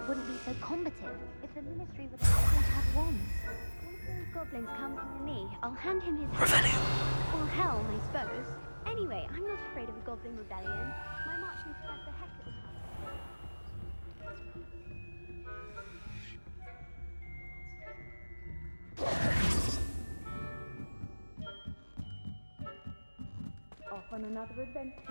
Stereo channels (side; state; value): both; inverted; correlation -1.00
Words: wouldn't be so combative if the ministry were going to have wands. One of those goblins comes near me, I'll hand him his Revelio. or helm, I suppose. Anyway, I'm not afraid of a goblin rebellion. My marching professor Hector will come. Off on another